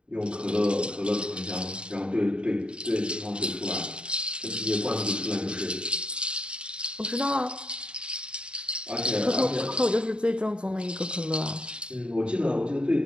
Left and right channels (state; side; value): late; left; 0.054 ms